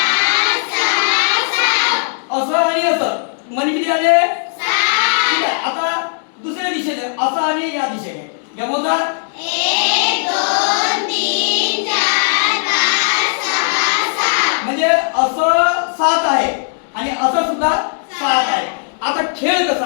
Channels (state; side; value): silent; right; digital silence